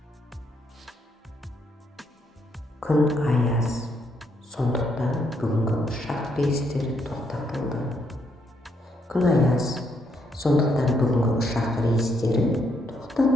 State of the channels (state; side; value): normal; both; correlation 0.74